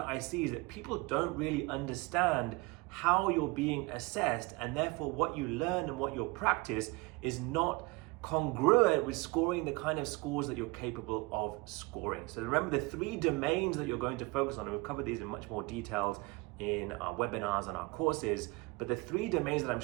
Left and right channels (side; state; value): left; quieter; 24.5 dB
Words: I see is that people don't really understand how you're being assessed, and therefore what you learn and what you practice is not congruent with scoring the kind of scores that you're capable of scoring. So remember the 3 domains that you're going to focus on, and we'll cover these in much more details in our webinars and our courses, but the 3 domains that I'm